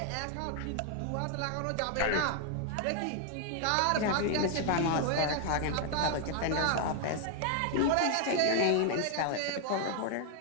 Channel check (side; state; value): both; different; correlation 0.00